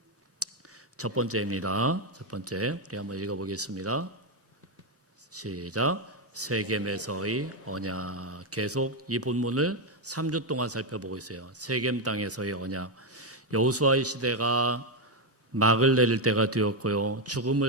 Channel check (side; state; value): both; normal; correlation 0.06